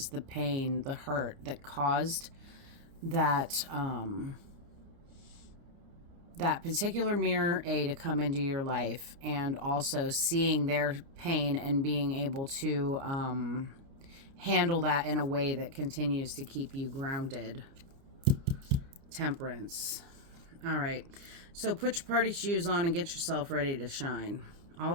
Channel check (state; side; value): late; left; 30 ms